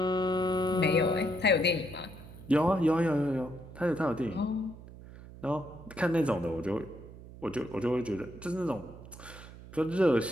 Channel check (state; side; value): noise; right; hum, 16 dB below the sound